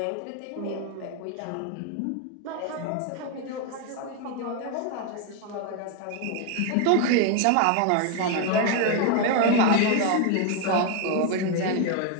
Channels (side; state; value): both; different; correlation 0.01